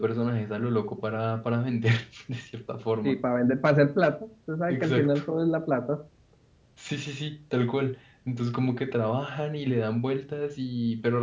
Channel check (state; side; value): identical; both; correlation 1.00